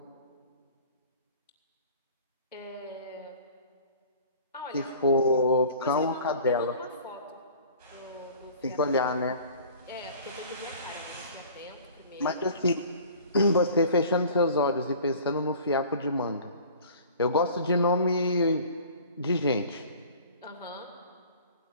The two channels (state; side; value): inverted; both; correlation -0.46